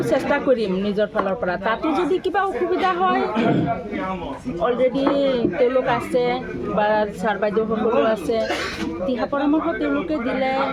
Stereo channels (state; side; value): identical; both; correlation 1.00